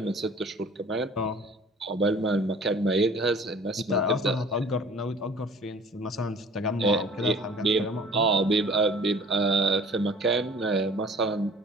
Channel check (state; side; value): normal; both; correlation 0.49